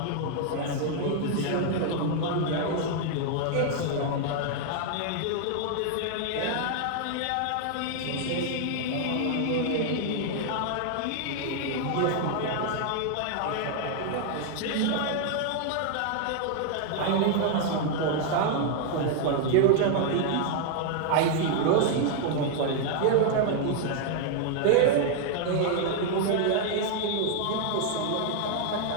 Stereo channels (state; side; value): different; both; correlation 0.00